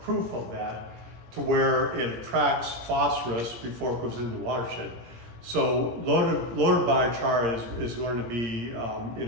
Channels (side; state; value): left; late; 17 ms